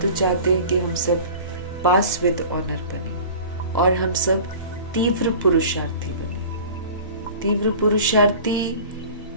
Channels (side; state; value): both; inverted; correlation -0.41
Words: चाहते हैं कि हम सब पास विद ऑनर बने और हम सब तीव्र पुरुषार्थी बने। तीव्र पुरुषार्थी